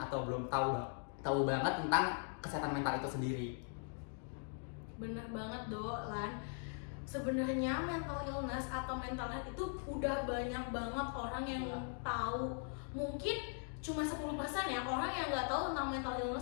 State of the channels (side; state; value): right; silent; 51 dB below the other